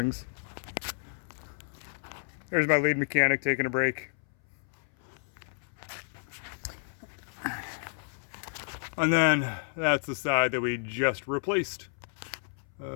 There's my lead mechanic taking a break. And then that's the side that we just replaced.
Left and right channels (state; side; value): silent; right; 57 dB below the other